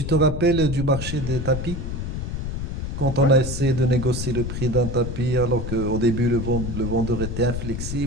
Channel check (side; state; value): left; noise; rumble, 4 dB below the sound